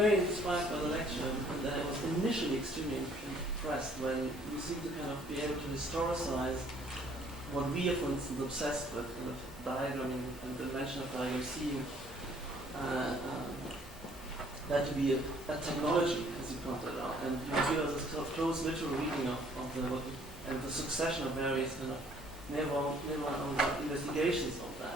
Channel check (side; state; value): both; normal; correlation 0.60